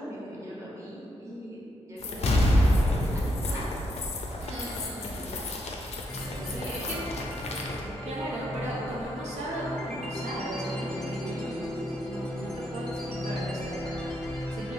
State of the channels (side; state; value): both; normal; correlation 0.78